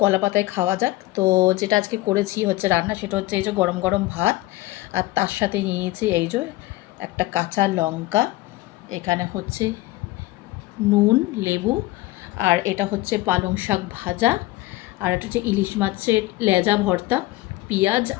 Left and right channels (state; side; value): quieter; right; 18.3 dB